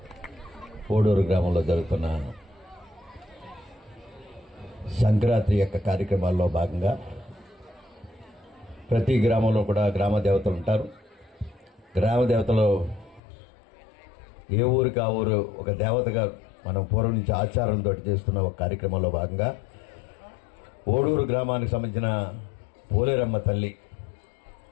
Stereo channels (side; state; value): right; drops out; at 13.2 s